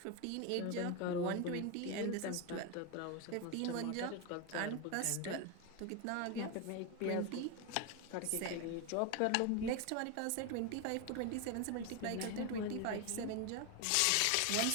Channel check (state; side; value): different; both; correlation 0.02